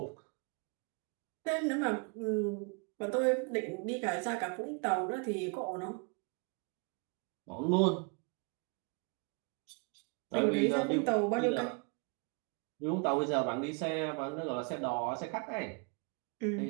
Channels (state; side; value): quieter; left; 35.1 dB